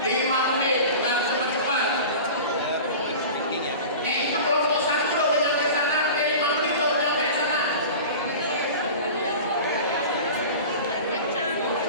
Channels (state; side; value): inverted; both; correlation -0.35